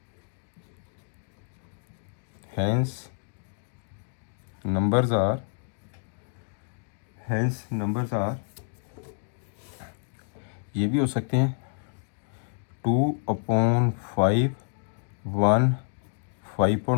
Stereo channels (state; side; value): silent; right; 59 dB below the other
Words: नंबर्स आर, ये भी हो सकते हैं 2/5 1